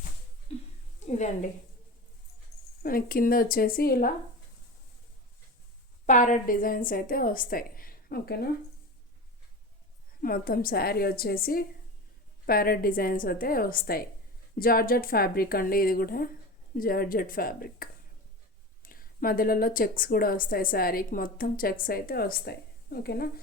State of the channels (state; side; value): normal; both; correlation 0.28